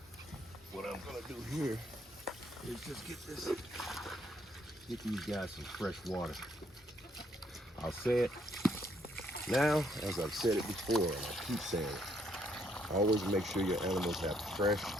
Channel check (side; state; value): both; normal; correlation 0.70